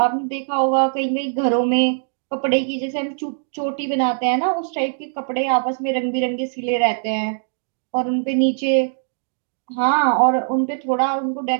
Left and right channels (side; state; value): left; silent; digital silence